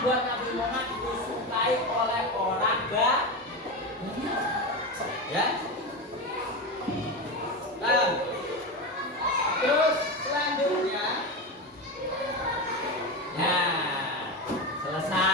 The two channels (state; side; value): normal; both; correlation 0.19